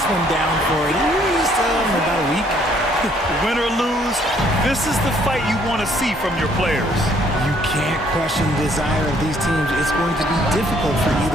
one down for at least about a week. Win or lose, this is the fight you want to see from your players. You can't question the desire of these teams. It's going to be difficult for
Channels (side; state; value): both; normal; correlation 0.64